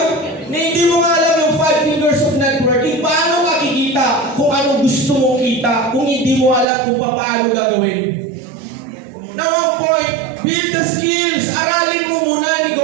Na hindi mo nga alam yung 5 fingers of networking, paano makikita kung ano gusto mong kita, kung hindi mo alam kung paano gagawin. Now, ang point, build the skills. Aralin mo muna ang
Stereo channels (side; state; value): left; drops out; at 6.7 s